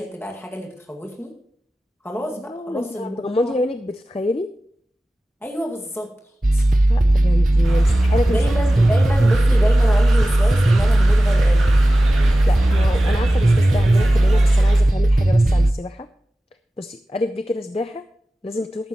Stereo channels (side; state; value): both; normal; correlation 0.96